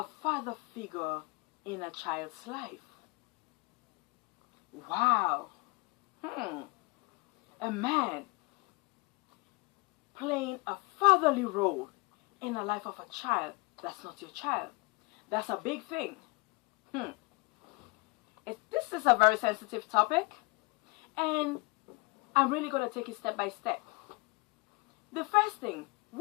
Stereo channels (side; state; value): right; quieter; 27.0 dB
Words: father figure in a child's life. Wow. A man playing a fatherly role in the life of a child that's not your child. That's a big thing. This is a very sensitive topic, and I'm really going to take it step by step. The first thing,